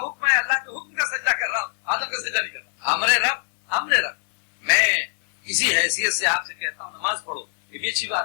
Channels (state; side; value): silent; right; digital silence